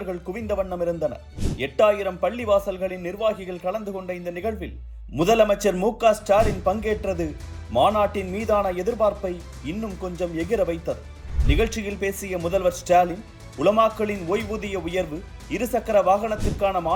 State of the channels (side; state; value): both; identical; correlation 1.00